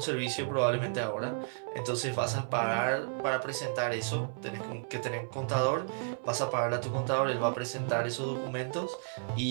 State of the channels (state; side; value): silent; left; 56 dB below the other